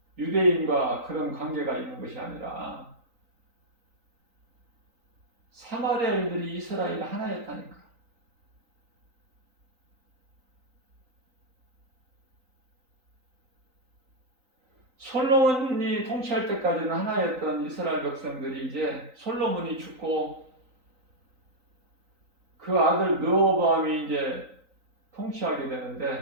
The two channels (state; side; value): late; left; 3.9 ms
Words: 유대인과 그런 관계가 있는 것이 아니라 사마리아인들이 이스라엘 하나였다니까. 솔로몬이 통치할 때까지는 하나였던 이스라엘 백성들이 이제 솔로몬이 죽고 그 아들 르호보암이 이제 통치하게